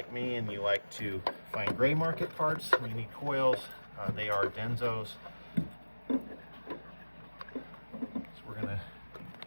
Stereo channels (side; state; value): both; inverted; correlation -1.00